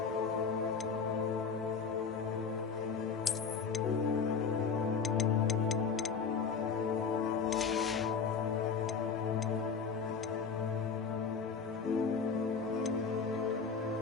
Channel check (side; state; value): right; quieter; 5.7 dB